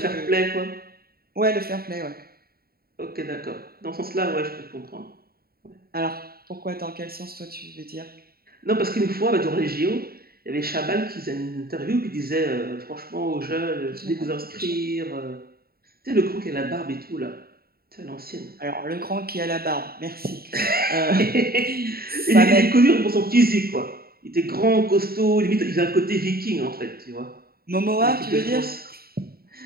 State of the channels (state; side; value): late; left; 0.44 ms